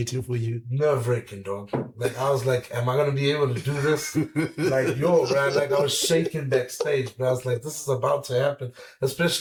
for you? Nerve-wracking, dog. Like, I was like, am I going to be able to do this? Like, yo, man, like, I was shaking backstage, but I was like, this is about to happen.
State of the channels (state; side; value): identical; both; correlation 1.00